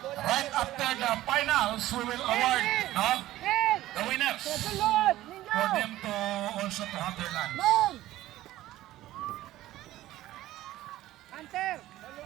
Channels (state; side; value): quieter; left; 15.2 dB